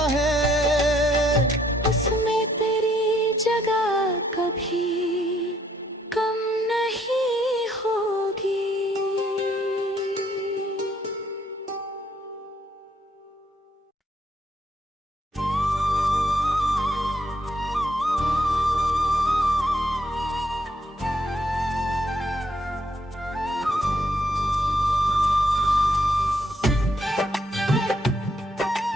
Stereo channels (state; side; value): normal; both; correlation 0.70